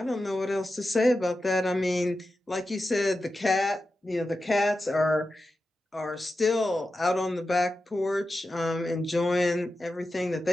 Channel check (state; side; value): normal; both; correlation 0.91